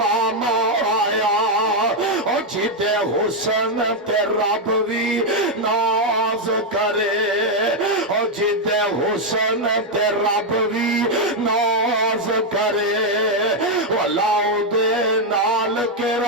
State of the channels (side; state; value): both; normal; correlation 0.02